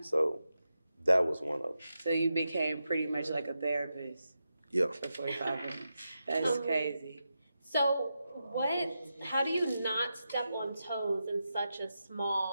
that was one of them. So you became pretty much like a therapist Yeah. for 45 minutes. That's crazy. So how do you not step on toes in such a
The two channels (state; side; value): inverted; both; correlation -0.88